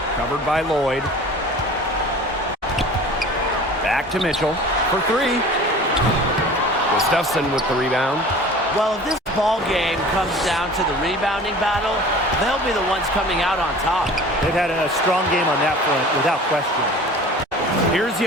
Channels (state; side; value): normal; both; correlation 0.42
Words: Covered by Lloyd. Back to Mitchell for 3. Gustafson with the rebound. Well, if this ball game comes down to the rebounding battle, they'll be the ones coming out on top. They've had a strong game on that front, without question. Here's